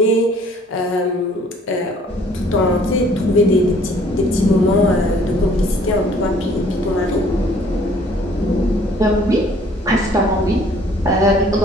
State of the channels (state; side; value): normal; both; correlation 0.58